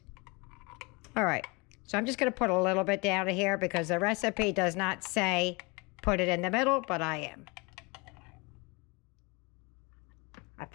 All right. So I'm just going to put a little bit down here because the recipe does not say put it in the middle, but I am. I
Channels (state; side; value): quieter; right; 27.8 dB